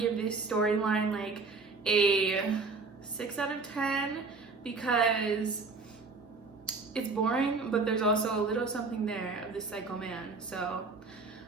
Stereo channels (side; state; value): left; quieter; 4.1 dB